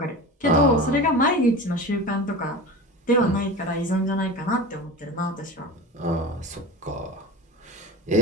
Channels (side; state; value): both; normal; correlation 0.30